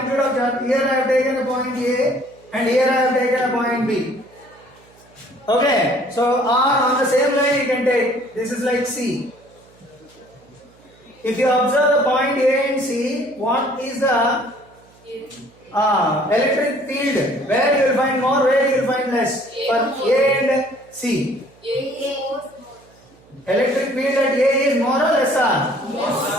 of charge. Here I have taken a point A and here I have taken a point B. Okay, so on the same line you can take. This is like C. If you observe the point A and C, what is the electric field? Where you will find more, where you will find less? For A and C. Electric field at A is more or lesser?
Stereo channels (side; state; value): right; noise; hum, 28 dB below the sound